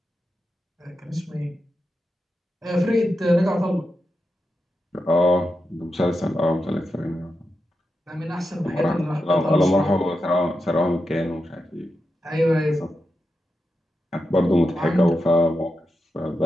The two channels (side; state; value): both; normal; correlation 0.88